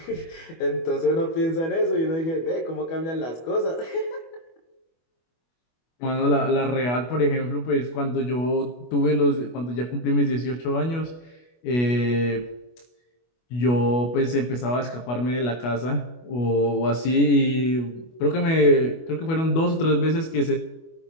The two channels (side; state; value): right; late; 25 ms